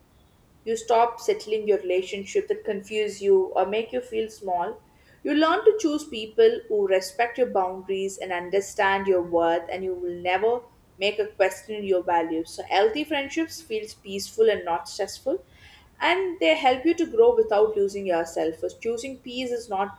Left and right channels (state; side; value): identical; both; correlation 1.00